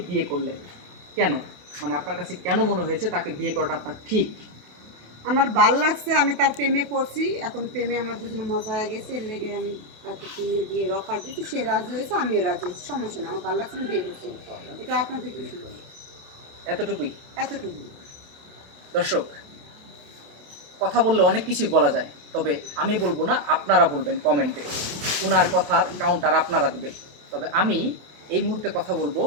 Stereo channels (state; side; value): late; left; 28 ms